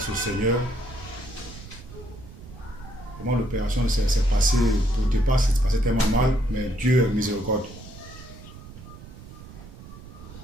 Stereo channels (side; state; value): right; noise; rumble, 16 dB below the sound